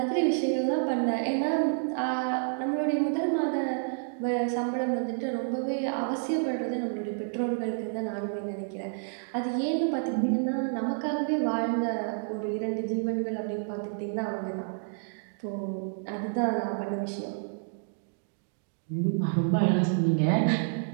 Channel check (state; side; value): silent; left; digital silence